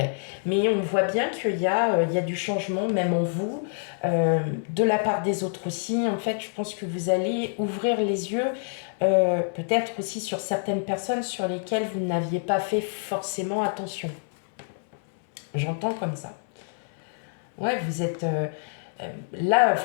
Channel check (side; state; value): right; silent; 58 dB below the other